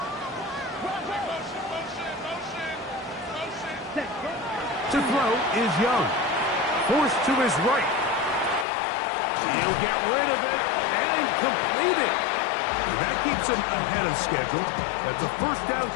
Set. To throw is Young. Forced to his right. He'll get rid of it and complete it. And that keeps him ahead of schedule. That's a first down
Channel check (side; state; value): right; drops out; at 8.7 s